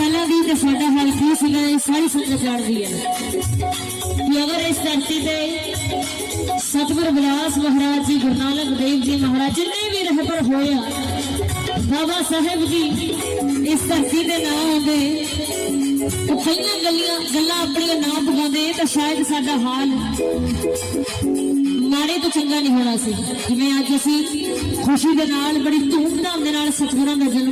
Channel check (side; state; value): both; identical; correlation 1.00